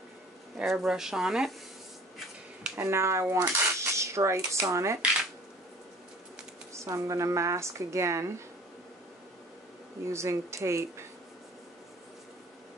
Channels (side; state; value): both; normal; correlation 0.48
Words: airbrush on it. And now I want stripes on it. So I'm going to mask again using tape.